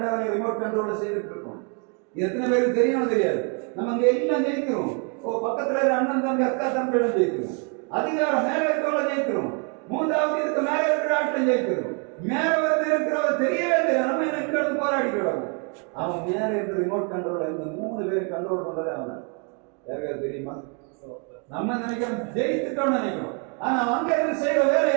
ரிமோட் கண்ட்ரோல செய்துட்டு இருக்கோம். எத்தனை பேருக்கு தெரியும் தெரியாது. நம்ம அங்க எல்லாம் ஜெயிக்கிறோம். பக்கத்துல அண்ணன் தம்பி அக்கா தம்பியிடம் ஜெயிக்கிறோம். அதிகாரம் மேல இருக்கவங்கள ஜெயிக்கிறோம். மூன்றாவது இதுக்கு மேல இருக்கிற ஆட்டம் ஜெயிக்கிறோம். மேல வந்து இருக்கிறவங்க தெரியவே தெரியாது. நம்ம எனக்கு போராடிக்கிறோம். அவன் மேல இருக்கிற ரிமோட் கண்ட்ரோல் இந்த 3 பேர் கண்ட்ரோல் பண்றதே அவன். யாருக்காவது தெரியுமா? நம்ம நினைக்கிறோம் ஜெயித்துட்டோம்னு நினைக்கிறோம். ஆனா அங்க இருந்து செய்யற வேலை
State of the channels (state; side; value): quieter; left; 37.5 dB